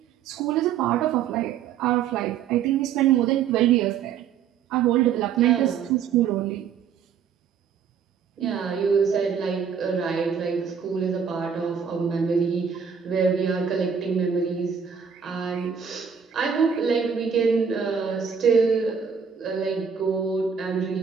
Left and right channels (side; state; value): left; quieter; 7.1 dB